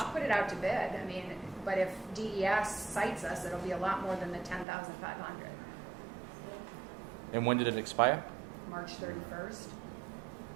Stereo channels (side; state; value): left; drops out; at 4.7 s